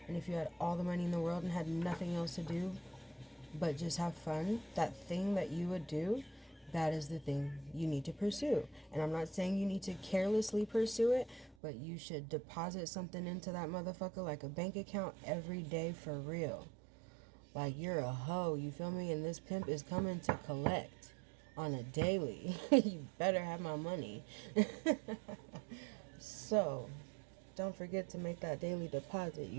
and if you had all the money in the world and had nothing else to do but just have fun, that thing that you would do, that is the thing you need to pursue. And I'm not saying you need to carelessly pursue it, but you should deposit something into that motherfucker like a bank account every day for real. Like you're a hoe, you feel me? And this pimp is coming to collect on a daily. You better have my money. So, don't forget to make that daily deposit,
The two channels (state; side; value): drops out; left; at 11.6 s